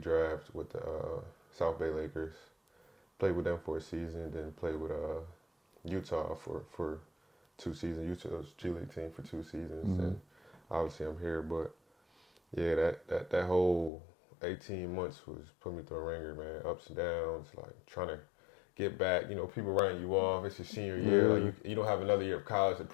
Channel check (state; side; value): drops out; right; at 13.9 s